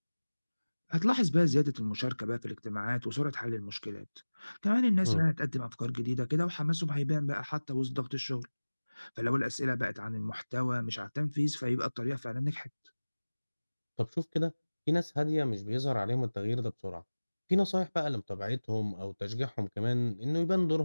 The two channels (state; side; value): inverted; both; correlation -1.00